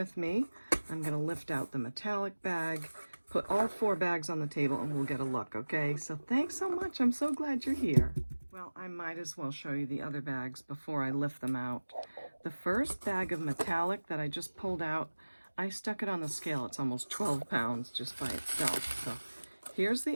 me. I'm going to lift out the metallic bag, put all 4 bags on the table, and we'll get a look, okay? So thanks so much. I'm so glad you're here. Well, I might as well show you the other bags before I lift them out. The first bag of metallic that I just pulled out, I stuck it on the scale. It's almost 12 pounds just by itself. So here's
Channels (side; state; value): both; inverted; correlation -1.00